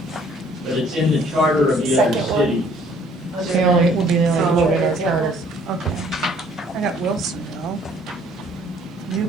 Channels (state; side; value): normal; both; correlation 0.59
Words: but it's in the charter of the other Second one. cities. It's the only, will be the only book in our charter. Okay. I got Wilsonville,